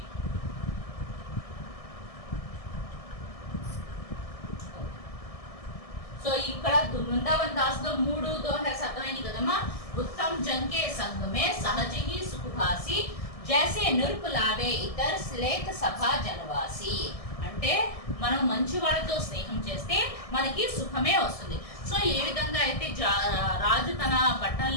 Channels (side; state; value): right; late; 1.6 ms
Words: సో ఇక్కడ वृंदावन दास తో 3 దోహస్ అర్థమైంది కదమ్మా. उत्तम जन के संग में सहज ही सुख भासी जैसे नृप लावे इतर श्लेत सभा जनवासी. అంటే మనం మంచి వాళ్ళతో స్నేహం చేస్తే మనకి సుఖమే వస్తుంది. సో ఏ విధంగా అయితే రాజు తన